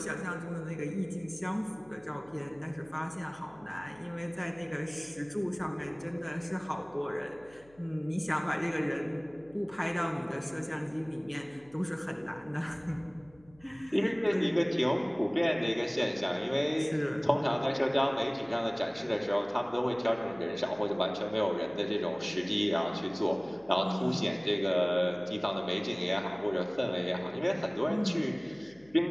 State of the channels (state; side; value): noise; left; hum, 28 dB below the sound